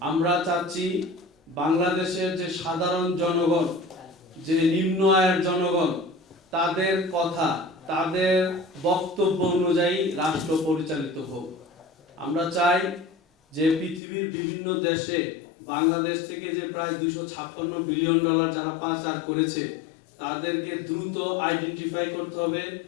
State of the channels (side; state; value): right; drops out; at 14.0 s